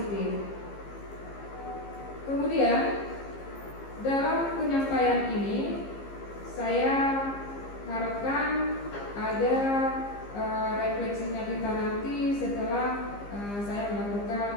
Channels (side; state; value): right; late; 15 ms